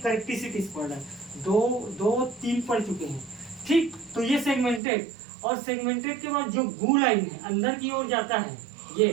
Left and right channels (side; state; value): left; drops out; at 4.8 s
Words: पढ़ रहे हैं, दो तीन पढ़ चुके हैं। ठीक, तो ये सेगमेंटेड, और सेगमेंटेड के बाद जो गू लाइन है अंदर की ओर जाता है,